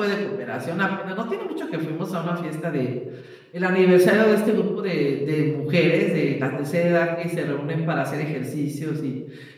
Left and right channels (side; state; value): both; identical; correlation 1.00